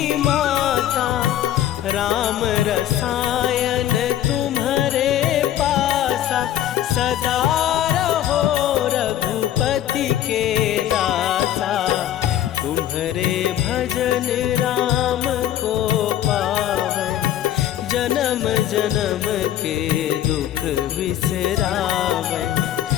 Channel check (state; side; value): quieter; right; 11.9 dB